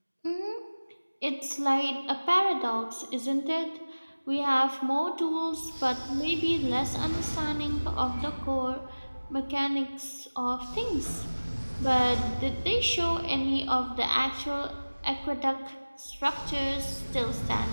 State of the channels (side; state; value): both; inverted; correlation -1.00